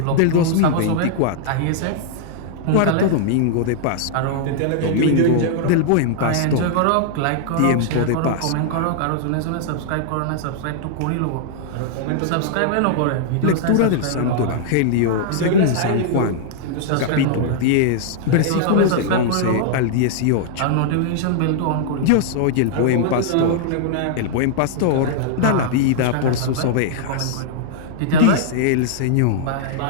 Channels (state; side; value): different; both; correlation -0.01